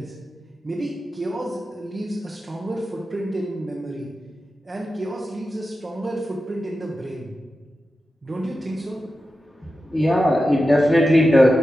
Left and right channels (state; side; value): normal; both; correlation 0.92